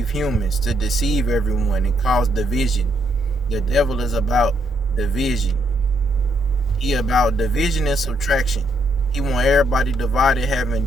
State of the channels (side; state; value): both; normal; correlation 0.75